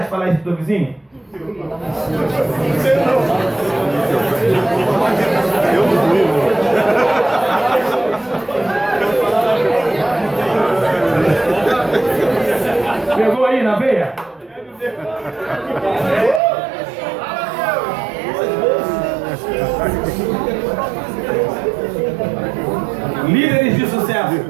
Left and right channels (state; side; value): drops out; left; at 16.4 s